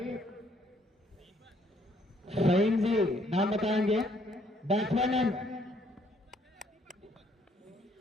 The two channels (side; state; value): both; normal; correlation 0.66